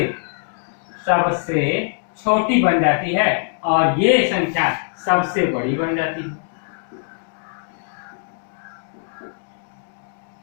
छोटी बन जाती है और ये संख्या सबसे बड़ी बन जाती है।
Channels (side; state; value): right; silent; digital silence